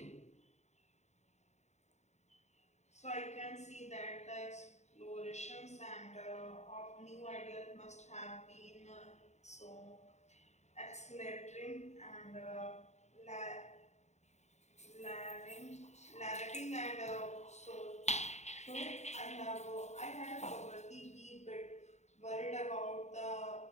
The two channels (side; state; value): right; late; 0.33 ms